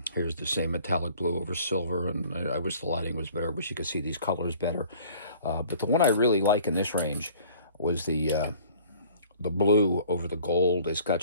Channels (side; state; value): both; inverted; correlation -0.51